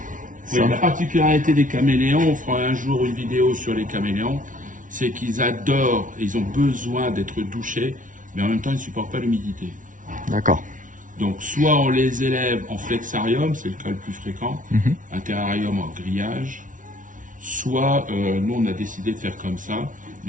Oui, la particularité des caméléons, on fera un jour une vidéo sur les caméléons, c'est qu'ils adorent, ils ont besoin d'être douchés, mais en même temps, ils ne supportent pas l'humidité. D'accord. Donc, soit on les élève en flexarium, c'est le cas le plus fréquent, un terrarium en grillage, soit nous, on a décidé de faire comme ça.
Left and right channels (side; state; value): left; late; 0.38 ms